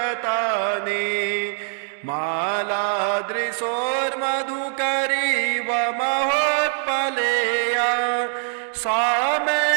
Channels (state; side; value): silent; left; digital silence